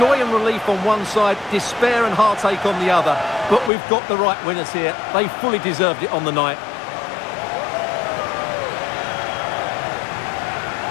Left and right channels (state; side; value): drops out; right; at 3.7 s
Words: and relief on one side, despair and heartache on the other. But we've got the right winners here. They fully deserved it on the night.